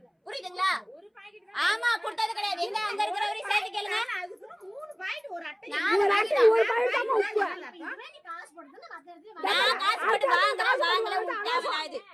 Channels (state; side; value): identical; both; correlation 1.00